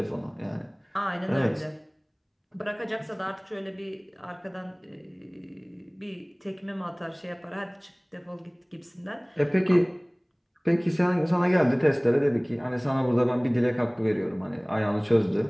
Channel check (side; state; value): both; identical; correlation 1.00